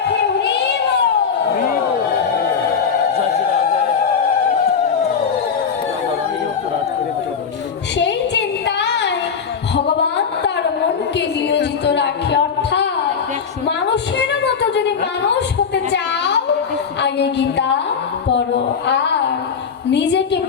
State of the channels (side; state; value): right; quieter; 6.4 dB